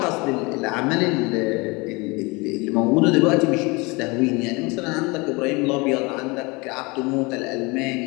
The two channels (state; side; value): quieter; right; 26.3 dB